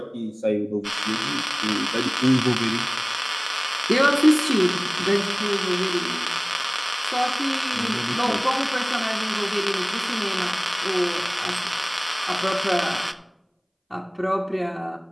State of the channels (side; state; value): both; identical; correlation 1.00